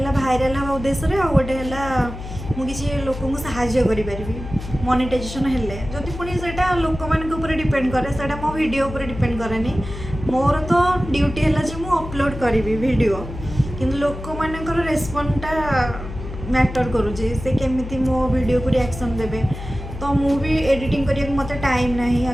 भाइराल हाँ उद्देश्य आ गोटे है मुझे लोक साहाय्य करी मोनेटाइजेशन हेल्ले जदि पुणी से लोक मान डिपेंड करे से मो वीडियो उपर डिपेंड करे मोर तो ड्यूटी है जे मु अपलोड करी वीडियो किंतु लोक मानकर रेस्पॉन्डटा मैटर करुचे से केमिति मो वीडियो को रिएक्शन देबे तो मु भी एडिटिंग करिया मते टाइम नहीं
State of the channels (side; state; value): left; noise; hum, 10 dB below the sound